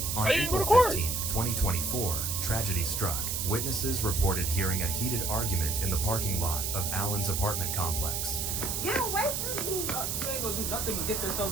On April 15th, 2024, tragedy struck. Witnesses reported hearing a heated argument in the parking lot of Allen's apartment complex. Get away from me! You ain't gonna do nothing but get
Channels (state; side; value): noise; right; hiss, 1 dB below the sound